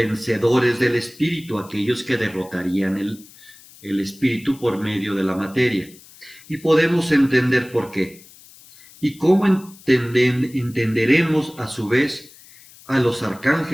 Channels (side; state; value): left; noise; hiss, 23 dB below the sound